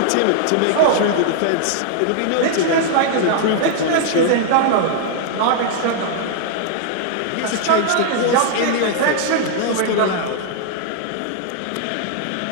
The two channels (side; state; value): both; different; correlation -0.01